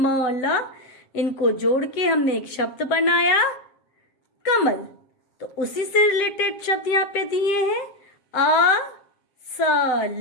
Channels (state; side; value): late; right; 7.5 ms